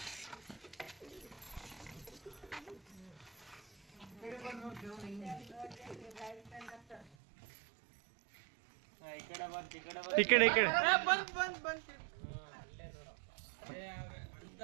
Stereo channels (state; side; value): drops out; left; at 7.1 s